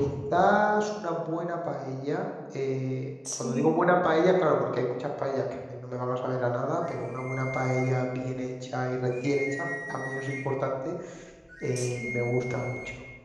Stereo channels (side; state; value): both; identical; correlation 1.00